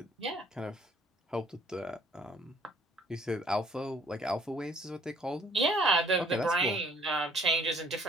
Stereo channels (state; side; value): normal; both; correlation 0.60